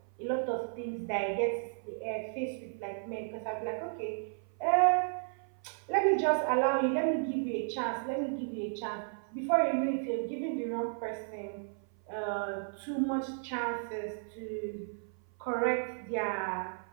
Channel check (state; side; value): silent; left; 55 dB below the other